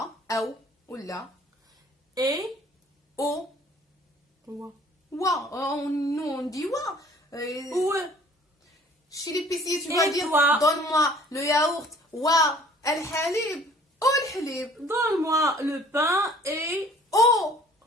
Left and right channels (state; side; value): normal; both; correlation 0.53